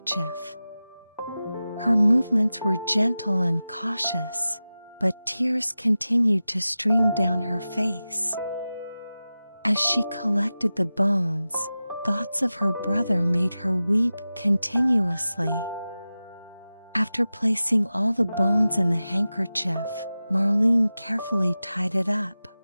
Her movements were gentle and cautious, but tears continued to stream down her face. As she collected the bones, thoughts of her brother made her weep continuously. After placing all the bones in the handkerchief, Marlene carefully tied it up.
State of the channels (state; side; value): inverted; both; correlation -0.95